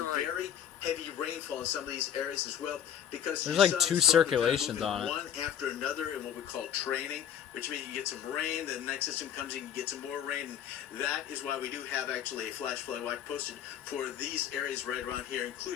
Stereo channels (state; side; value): quieter; right; 9.4 dB